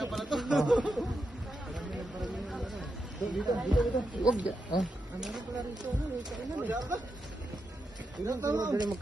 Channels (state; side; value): normal; both; correlation 0.86